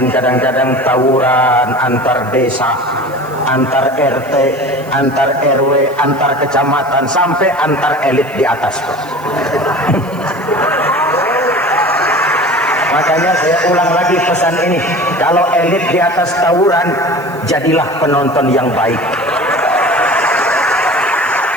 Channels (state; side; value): noise; right; hiss, 24 dB below the sound